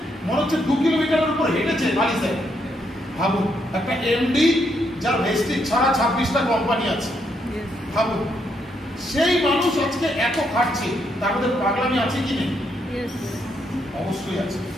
মনে হচ্ছে 2 কিলোমিটারের উপর হেঁটেছে বালি স্যার। ভাবুন, একটা এমডি যার ভেস্টিজ ছাড়া 26টা কোম্পানি আছে, ভাবুন সেই মানুষ আজকে এত খাটছে, তার মধ্যে পাগলামি আছে কি নেই? অবশ্যই আছে।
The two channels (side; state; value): both; normal; correlation 0.76